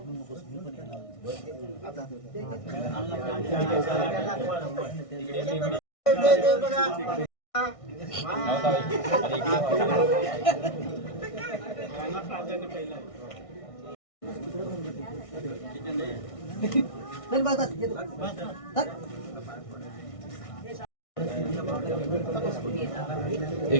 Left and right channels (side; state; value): right; late; 1.6 ms